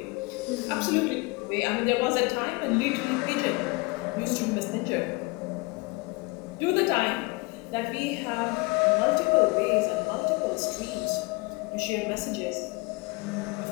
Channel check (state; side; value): quieter; right; 26.4 dB